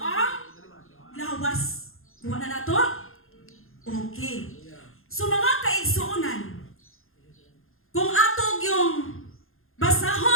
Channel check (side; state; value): right; late; 0.60 ms